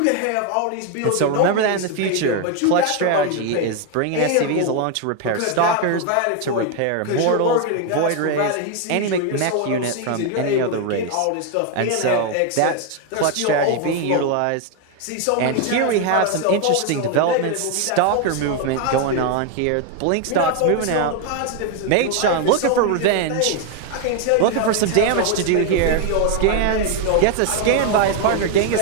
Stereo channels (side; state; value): both; different; correlation 0.01